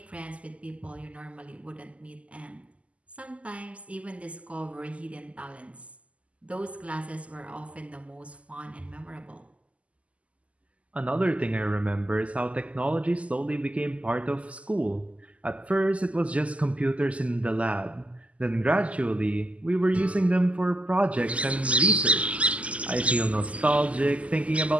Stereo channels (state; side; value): late; left; 0.064 ms